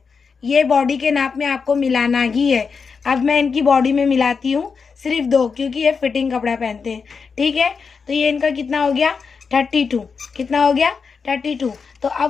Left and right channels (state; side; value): quieter; right; 5.4 dB